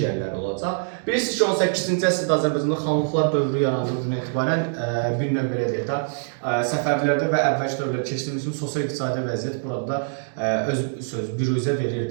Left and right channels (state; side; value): silent; left; digital silence